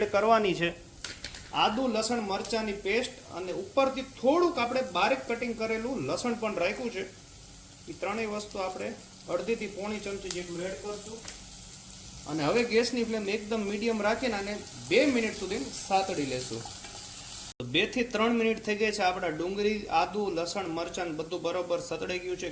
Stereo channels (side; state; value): both; identical; correlation 1.00